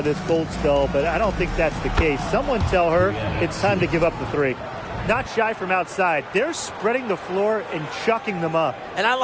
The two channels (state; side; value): identical; both; correlation 1.00